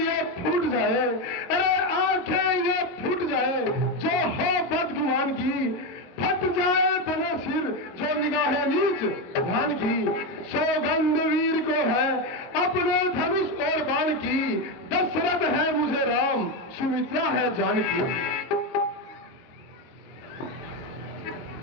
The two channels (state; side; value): late; right; 22 ms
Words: फूट जाए, अरे आंखें ये फूट जाए जो हो बदगुमान की, फट जाए बने सिर जो निगाहें नीच ध्यान की। सौगंध वीर को है अपने धनुष और बाण की, दशरथ है मुझे राम, सुमित्रा है जानकी।